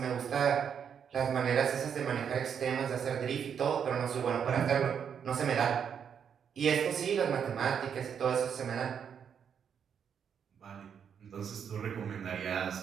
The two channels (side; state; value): left; quieter; 7.7 dB